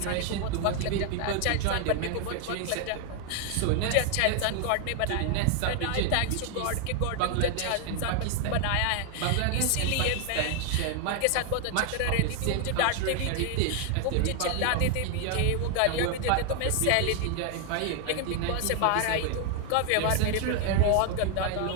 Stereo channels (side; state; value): both; different; correlation 0.00